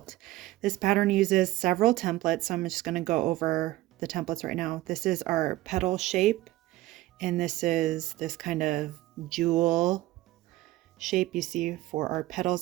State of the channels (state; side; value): quieter; left; 16.9 dB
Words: This pattern uses several templates, so I'm just going to go over the templates right now. This is our petal shape, and this is this kind of jewel shape you see for our petals